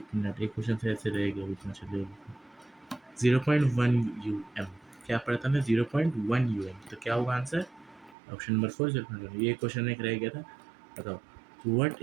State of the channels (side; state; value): left; drops out; at 8.2 s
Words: मिनट, एक क्वेश्चन से ऐसे रहेगा बीच में, चलिए। 0.1 क्या पढ़ा था हमने? 0.1 तो क्या होगा आंसर? Option number 4, 0.1। ये क्वेश्चन एक रह गया था। बताओ, what